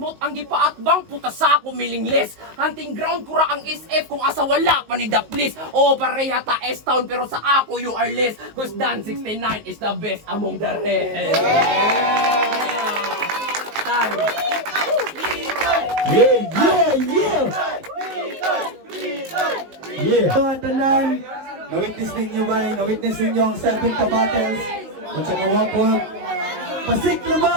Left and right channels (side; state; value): left; late; 19 ms